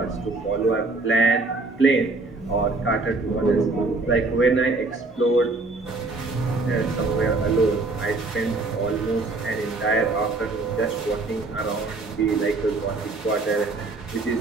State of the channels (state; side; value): quieter; left; 3.4 dB